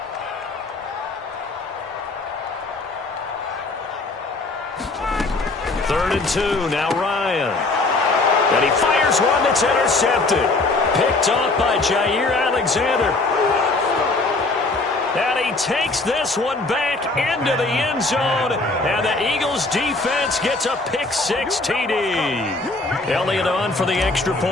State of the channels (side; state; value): right; quieter; 3.3 dB